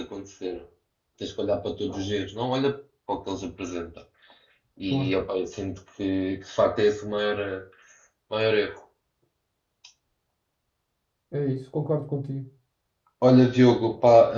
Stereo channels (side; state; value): both; identical; correlation 1.00